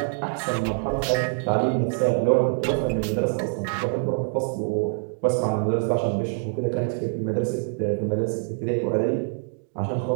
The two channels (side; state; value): left; silent; digital silence